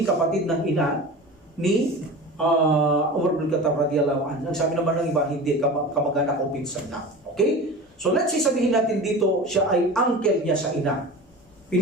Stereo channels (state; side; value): normal; both; correlation 0.34